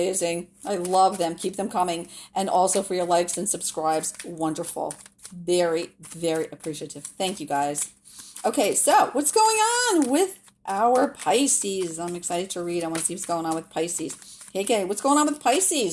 I love them. Keep them coming, and also for your likes and subscribes. Wonderful. Very, very appreciative. Thank you, guys. Okay, so what's going on with our Pisces? I'm excited to read. I want to see what's going on with Pisces. Okay, what's going on with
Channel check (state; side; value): identical; both; correlation 1.00